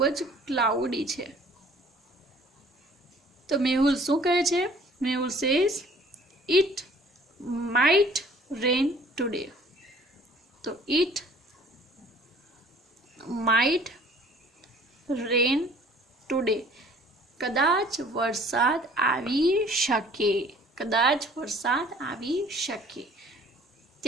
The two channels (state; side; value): normal; both; correlation 0.53